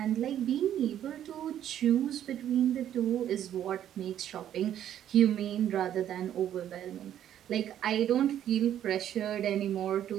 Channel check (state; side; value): quieter; left; 10.8 dB